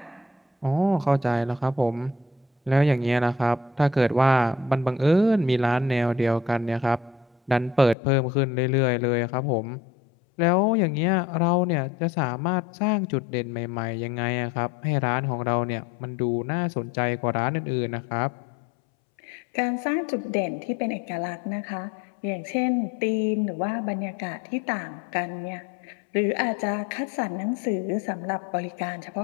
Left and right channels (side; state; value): right; drops out; at 8.0 s